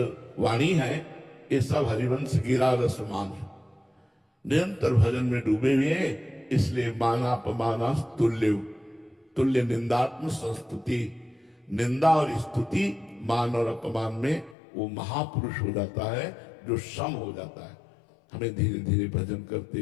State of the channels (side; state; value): right; drops out; at 14.6 s